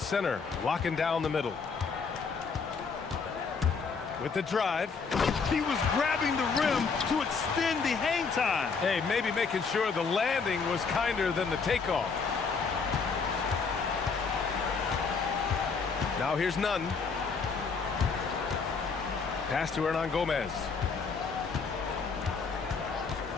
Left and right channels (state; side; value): quieter; right; 5.1 dB